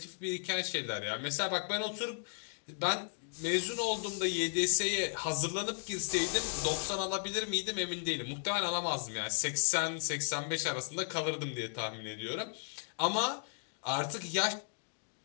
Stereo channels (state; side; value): silent; right; digital silence